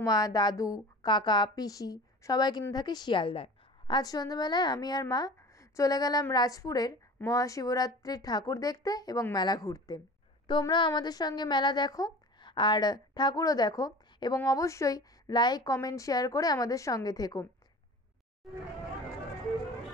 দাদু, কাকা, পিসি সবাই কিন্তু থাকে শিয়ালদায়। আজ সন্ধ্যাবেলায় আমি আর মা চলে গেলাম রাজপুরের মহাশিবরাত্রির ঠাকুর দেখতে এবং মেলা ঘুরতে। তোমরাও আমাদের সঙ্গে মেলা দেখো আর ঠাকুরও দেখো, এবং অবশ্যই লাইক, কমেন্ট, শেয়ার করে আমাদের সঙ্গে থেকো।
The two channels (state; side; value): normal; both; correlation 0.38